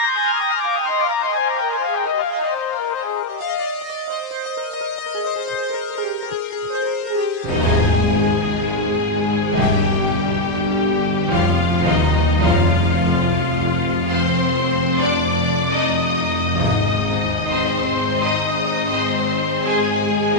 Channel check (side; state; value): left; late; 25 ms